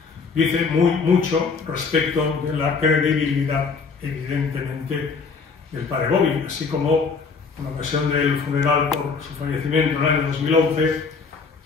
dice mucho respecto de la credibilidad, evidentemente, del padre Bobby, así como en ocasión del funeral por su fallecimiento en el año 2011,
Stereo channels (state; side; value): quieter; right; 5.0 dB